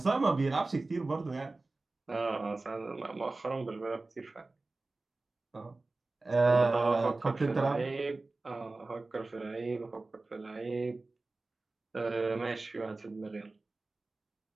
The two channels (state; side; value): quieter; left; 3.3 dB